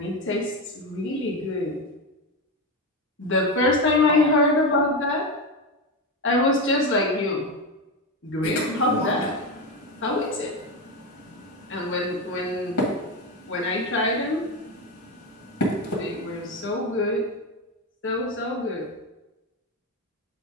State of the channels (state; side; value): normal; both; correlation 0.15